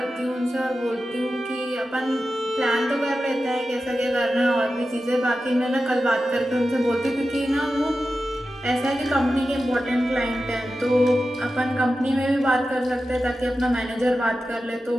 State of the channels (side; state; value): both; normal; correlation 0.92